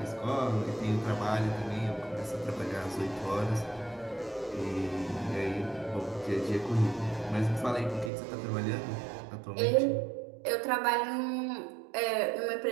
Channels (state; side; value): drops out; left; at 8.1 s